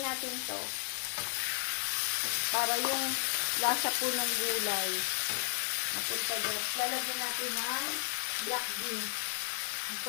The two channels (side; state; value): right; silent; 55 dB below the other